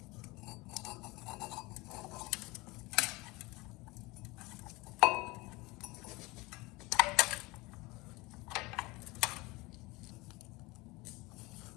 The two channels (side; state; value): right; quieter; 23.1 dB